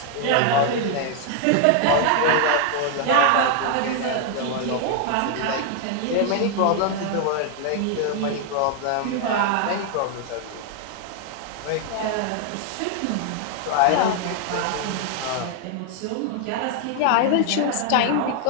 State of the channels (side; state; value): both; different; correlation 0.00